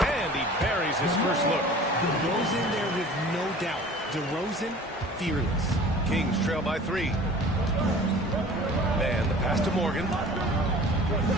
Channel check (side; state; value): both; normal; correlation 0.44